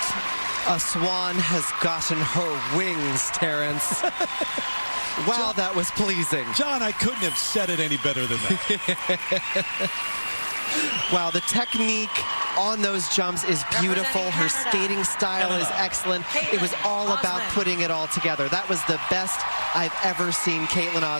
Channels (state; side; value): inverted; both; correlation -1.00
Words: A swan has gotten her wings, Terrence. Wow, that was pleasing. John, I couldn't have said it any better than that. Wow, the technique on those jumps is beautiful. Her skating style is excellent. It was all about putting it all together. That was the best I've ever seen Caitlin